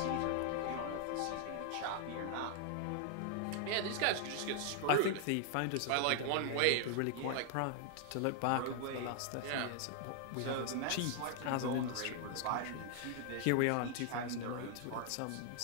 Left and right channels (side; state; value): both; different; correlation 0.00